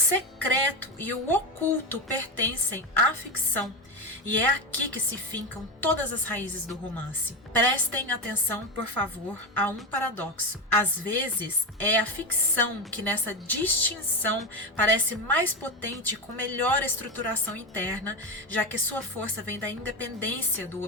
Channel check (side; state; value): both; normal; correlation 0.15